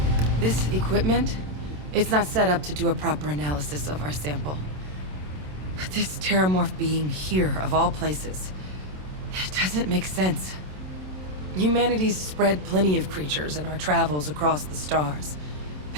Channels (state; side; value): late; left; 27 ms